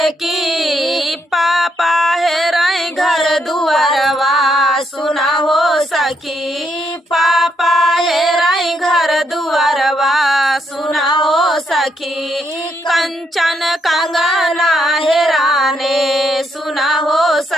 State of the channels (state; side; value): normal; both; correlation 0.76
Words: की, पापा हेराई घर दुआरवा सुना हो सखी, पापा हेराई घर दुआरवा सुना हो सखी, कंचन कंगना हेराने सुना हो